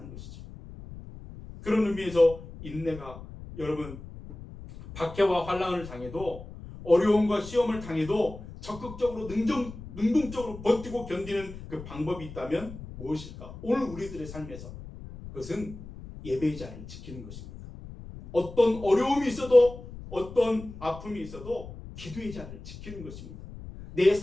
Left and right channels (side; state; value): left; noise; rumble, 14 dB below the sound